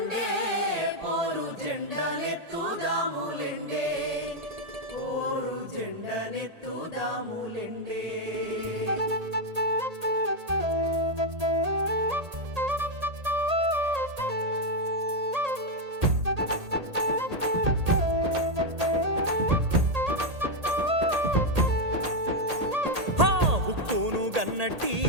పోరు జెండనెత్తుదాములెండే పోరు జెండనెత్తుదాములెండే ఉక్కును గన్నట్టి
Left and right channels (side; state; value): left; late; 1.8 ms